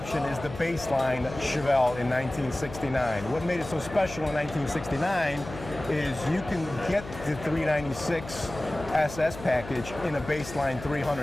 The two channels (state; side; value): noise; left; hum, 13 dB below the sound